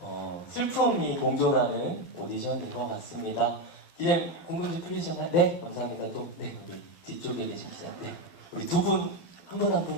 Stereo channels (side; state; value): right; late; 12 ms